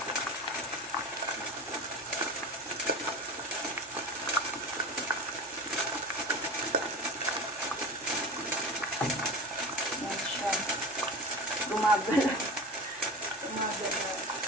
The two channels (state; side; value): normal; both; correlation 0.31